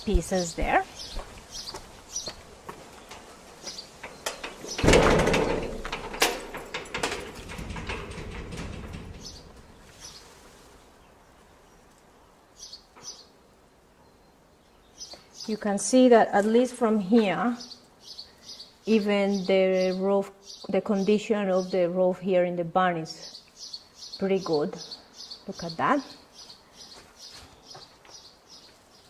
pieces there. You can see that at least from here, even the roof, the condition of the roof here in the barn is pretty good. Look at that.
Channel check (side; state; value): both; identical; correlation 1.00